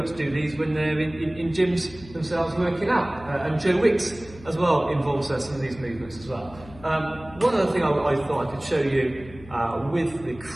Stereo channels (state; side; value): noise; left; hum, 19 dB below the sound